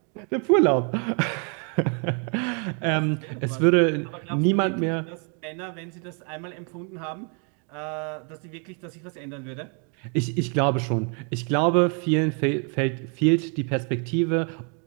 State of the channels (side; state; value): left; quieter; 39.0 dB